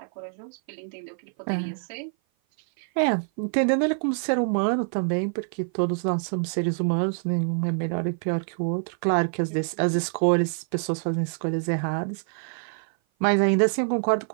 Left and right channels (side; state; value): left; silent; 55 dB below the other